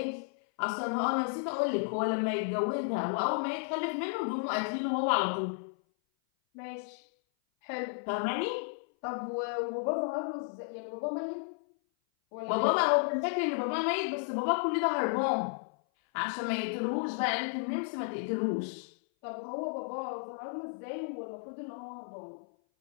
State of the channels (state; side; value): silent; right; 56 dB below the other